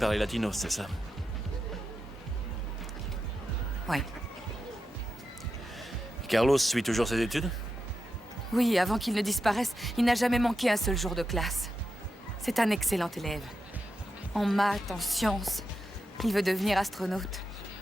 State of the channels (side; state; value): both; normal; correlation 0.88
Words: les Latinos, c'est ça? Carlos suit toujours ses études? Oui, avant qu'il ne disparaisse, il n'a jamais manqué un seul jour de classe. C'est un excellent élève. En maths, en sciences. Il veut devenir astronaute.